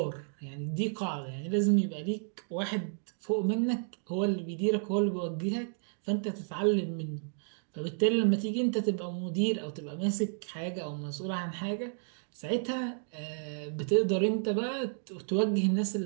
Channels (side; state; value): left; silent; digital silence